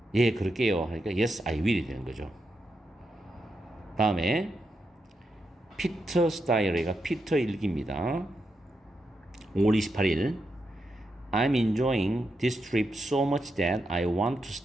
예 그럴게요 하니까 yes I will이 되는 거죠. 다음에 피터 스타일이가 피터 일기입니다. 5월 28일 I'm enjoying this trip so much that I want to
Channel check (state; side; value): normal; both; correlation 0.85